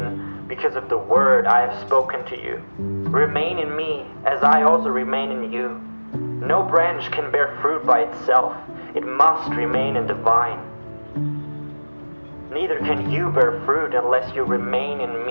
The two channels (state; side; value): inverted; both; correlation -1.00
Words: because of the word I have spoken to you. Remain in me, as I also remain in you. No branch can bear fruit by itself. It must remain in the vine. Neither can you bear fruit unless you remain in